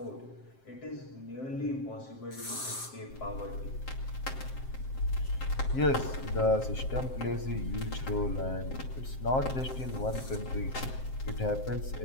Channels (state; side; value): late; right; 7.6 ms